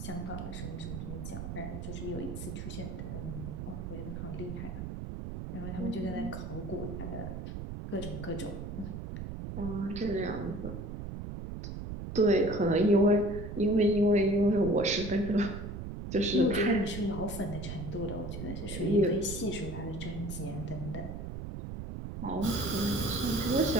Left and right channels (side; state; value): right; noise; rumble, 7 dB below the sound